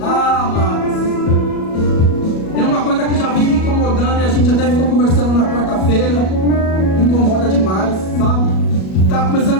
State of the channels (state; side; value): late; right; 37 ms